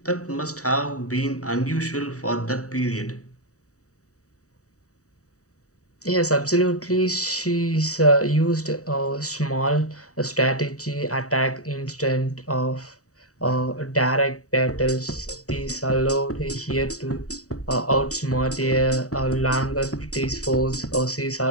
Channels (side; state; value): right; late; 0.66 ms